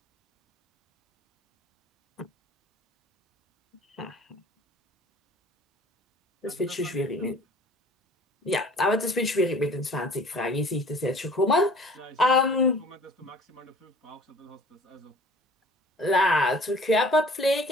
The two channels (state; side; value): normal; both; correlation 0.49